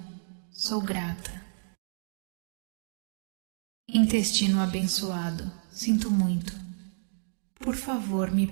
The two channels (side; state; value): left; silent; digital silence